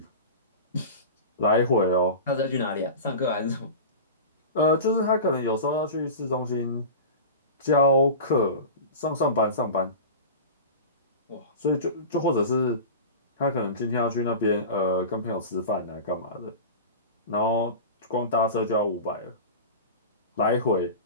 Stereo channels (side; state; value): both; inverted; correlation -0.31